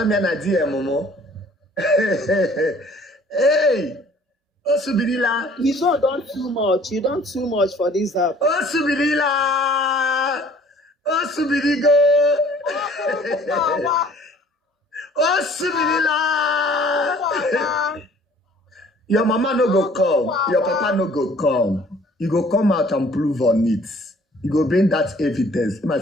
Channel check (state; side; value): normal; both; correlation 0.54